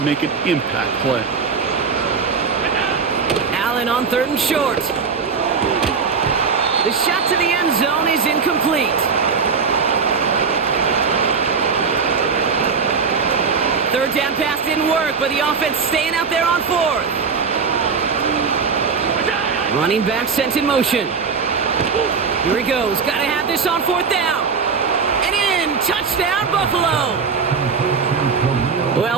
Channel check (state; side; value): quieter; left; 5.5 dB